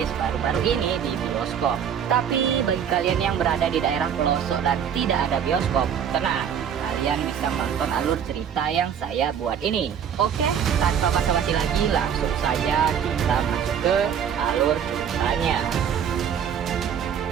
baru-baru ini di bioskop. Tapi bagi kalian yang berada di daerah pelosok dan tidak ada bioskop, tenang, kalian bisa menonton alur cerita yang saya buat ini. Oke, tanpa basa-basi lagi, langsung saja kita masuk ke alur ceritanya.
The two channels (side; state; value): left; quieter; 8.2 dB